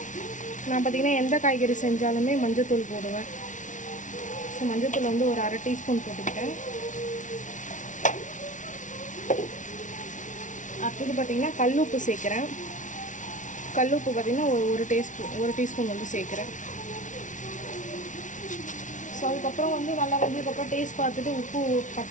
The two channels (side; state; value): right; late; 0.37 ms